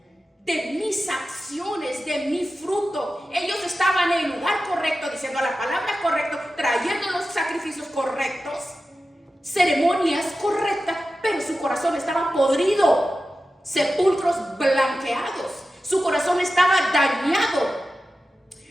de mis acciones, de mi fruto. Ellos estaban en el lugar correcto, diciendo la palabra correcta, trayendo los sacrificios correctos, ceremonias correctas, pero su corazón estaba podrido, sepulcros blanqueados, su corazón estaba dañado.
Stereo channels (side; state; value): both; normal; correlation 0.93